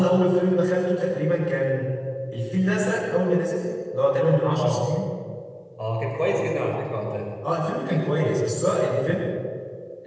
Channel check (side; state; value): both; identical; correlation 1.00